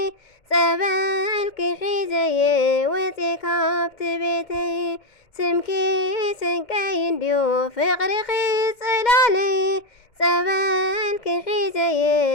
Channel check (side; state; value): right; late; 2.1 ms